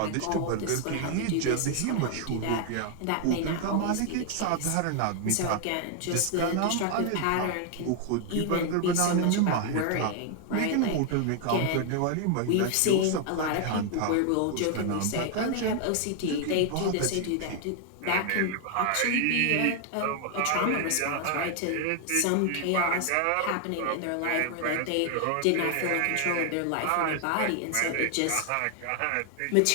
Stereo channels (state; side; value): different; both; correlation 0.00